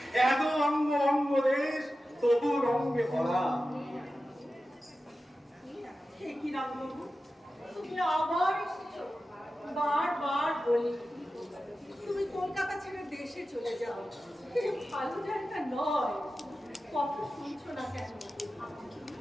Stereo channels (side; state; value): both; normal; correlation 0.93